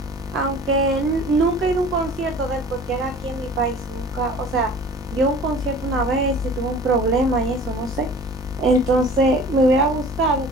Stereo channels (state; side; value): noise; left; hum, 21 dB below the sound